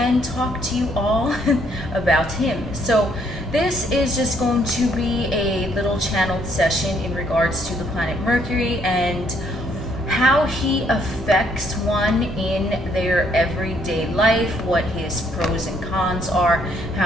talk to you all about him. So this is just going to be a little channeled session in regards to the planet Mercury and how he affects one in their everyday life, what his pros and cons are,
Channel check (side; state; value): both; normal; correlation 0.68